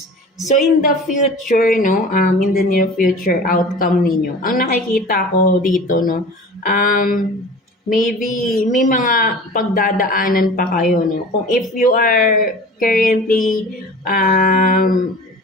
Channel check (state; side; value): normal; both; correlation 0.39